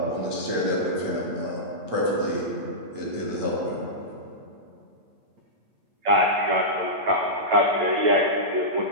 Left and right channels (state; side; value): late; left; 8.8 ms